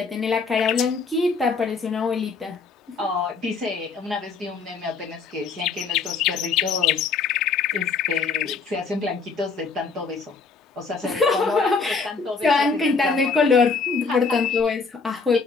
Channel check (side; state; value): right; quieter; 4.8 dB